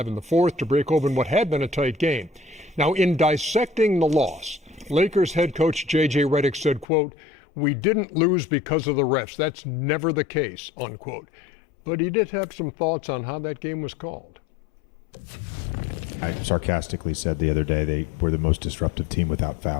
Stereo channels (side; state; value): right; drops out; at 6.9 s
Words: in the fourth to break open what had been a tight game. Now, in dissecting the loss, Lakers head coach J.J. Redick said, quote, "We didn't lose because of the refs. That's never the case," unquote. But he did have some thoughts on how that game was called. I sarcastically said the other day they were the most disruptive team without